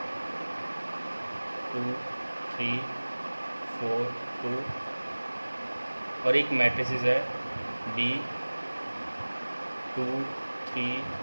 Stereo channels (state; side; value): inverted; both; correlation -1.00